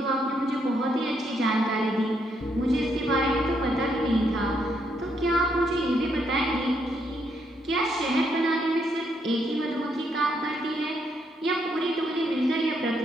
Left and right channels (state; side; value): normal; both; correlation 0.75